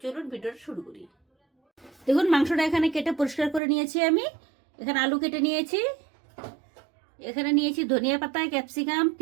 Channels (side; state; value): left; drops out; at 3.6 s